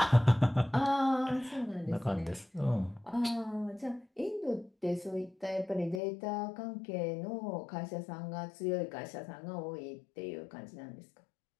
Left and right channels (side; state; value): right; drops out; at 6.0 s